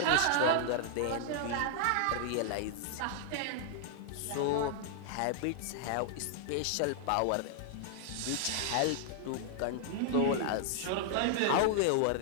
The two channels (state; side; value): different; both; correlation -0.01